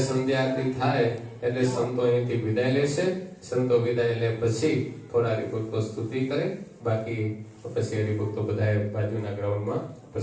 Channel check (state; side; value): identical; both; correlation 1.00